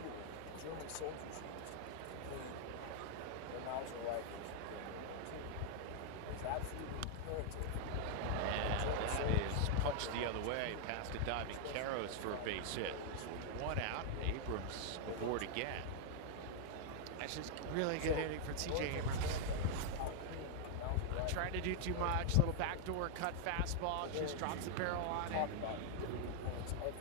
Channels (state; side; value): different; both; correlation 0.00